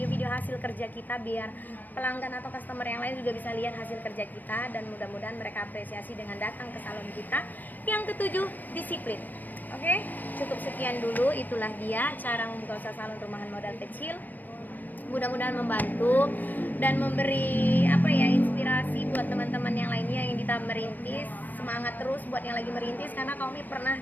hasil kerja kita biar pelanggan atau customer yang lain juga bisa lihat hasil kerja kita, dan mudah-mudahan mereka apresiasi dengan datang ke salon kita. Yang ketujuh, disiplin. Oke, cukup sekian dulu, itulah dia cara membuka usaha salon rumahan modal kecil. Mudah-mudahan membantu dan memberi inspirasi buat teman-teman yang lainnya yang kita merintis. Semangat terus buat yang lagi merintis, karena Kak Ome pernah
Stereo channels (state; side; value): late; right; 0.088 ms